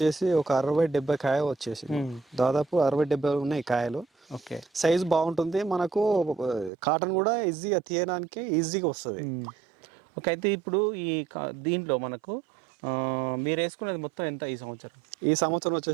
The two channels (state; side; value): drops out; left; at 6.7 s